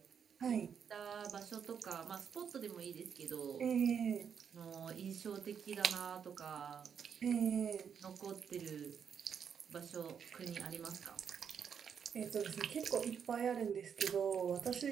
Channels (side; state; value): left; quieter; 7.4 dB